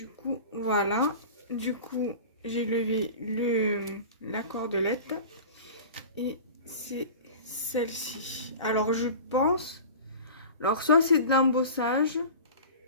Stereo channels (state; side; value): inverted; both; correlation -0.36